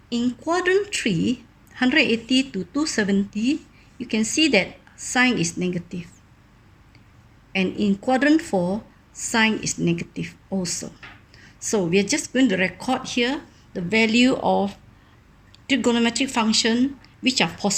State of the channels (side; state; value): both; identical; correlation 1.00